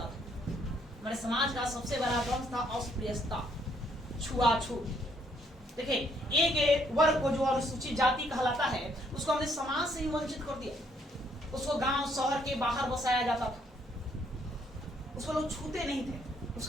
था, हमारे समाज का सबसे बड़ा ध्वंस था अस्पृश्यता, छुआछूत। देखिए एक वर्ग को जो अनुसूचित जाति कहलाता है उसको हमने समाज से ही वंचित कर दिया, उसको गांव शहर के बाहर बसाया जाता था, उसको लोग छूते नहीं थे,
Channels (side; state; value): both; normal; correlation 0.69